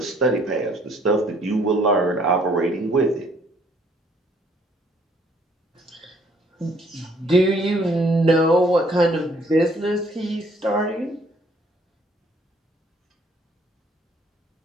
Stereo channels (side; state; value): both; normal; correlation 0.63